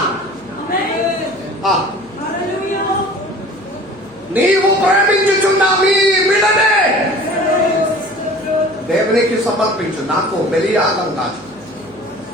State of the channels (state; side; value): noise; left; hum, 28 dB below the sound